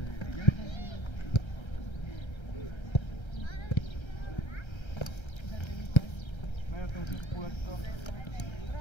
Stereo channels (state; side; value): late; right; 1.3 ms